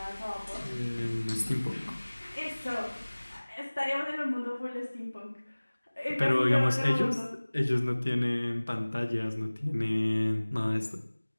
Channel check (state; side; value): inverted; both; correlation -1.00